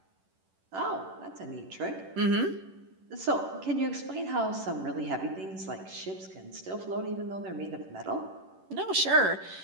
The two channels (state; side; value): late; left; 11 ms